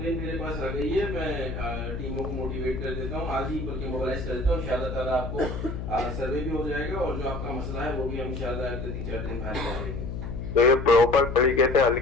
मेरे पास आ गई है, मैं टीमों को मोटिवेट कर देता हूँ, आज ही बल्कि मोबाइलाइज कर देता हूँ। इंशाल्लाह ताला आपको सर्वे भी हो जाएगा और जो आपका मसला है वो भी हम इंशाल्लाह अगले 3-4 दिन बाहर कर देंगे। तो ये प्रॉपर तरीके से हल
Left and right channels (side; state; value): left; noise; hum, 6 dB below the sound